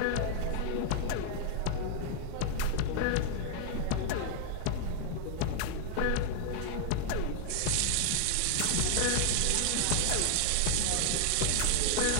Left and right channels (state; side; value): different; both; correlation 0.00